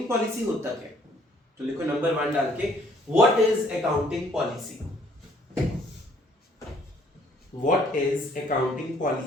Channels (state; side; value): normal; both; correlation 0.62